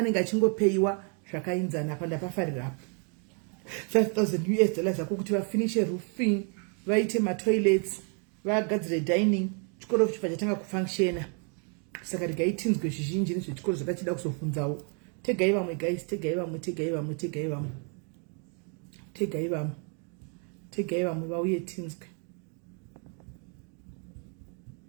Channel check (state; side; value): quieter; left; 39.3 dB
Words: achingopeyiwa zvakainzana panda pafarira apo $5,000 zako kuti vafinishe roofing vaite ma toilets vagadzire dining chikoro chifa chatanga kufunctiona. Saka rigaitinzwe zvizhinji nezvechikoro zvakachida kuzofunzawo. Tegai vamwe guys, tegai vamwe vauye tinzwe.